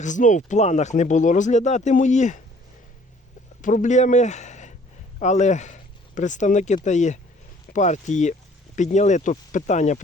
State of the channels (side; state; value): both; normal; correlation 0.56